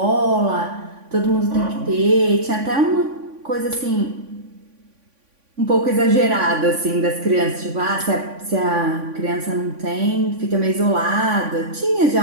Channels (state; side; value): late; left; 3.5 ms